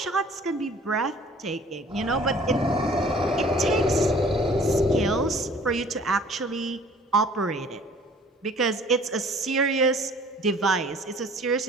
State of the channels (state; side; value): normal; both; correlation 0.52